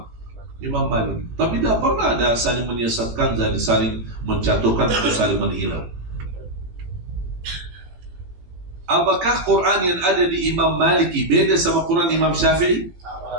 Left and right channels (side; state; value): left; late; 17 ms